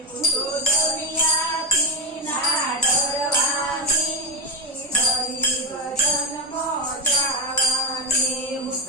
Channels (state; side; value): normal; both; correlation 0.10